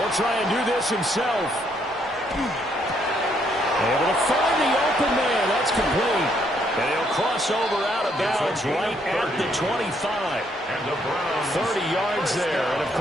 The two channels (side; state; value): both; normal; correlation 0.71